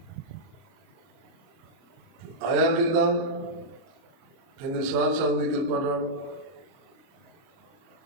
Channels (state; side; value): late; left; 30 ms